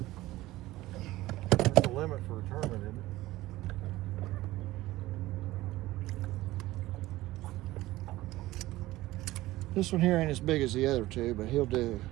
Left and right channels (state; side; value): quieter; left; 17.3 dB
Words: That's the limit for a tournament, isn't it? This one here ain't as big as the other two, but he'll do.